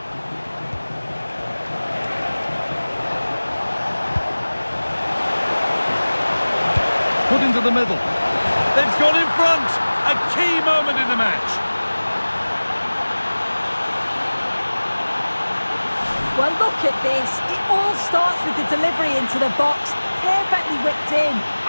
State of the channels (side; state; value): both; inverted; correlation -1.00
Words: Put into the middle. They've gone in front. A key moment in the match. Well, look at this. It all starts with the delivery into the box, perfectly whipped in,